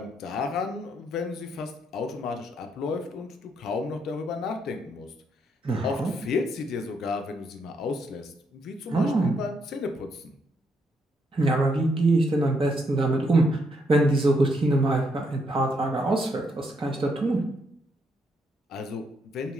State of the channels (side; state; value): both; normal; correlation 0.75